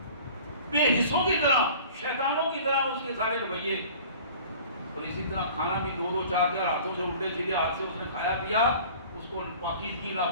بے حصوں کی طرح شیطانوں کی طرح اس کے سارے رویے. اور اسی طرح کھانا بھی دو چار ہاتھوں سے الٹے سیدھے ہاتھ سے اس نے کھایا پیا، اس کو پاکیزگی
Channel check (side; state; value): both; inverted; correlation -0.45